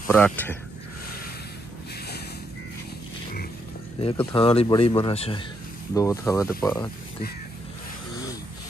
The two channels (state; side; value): normal; both; correlation 0.77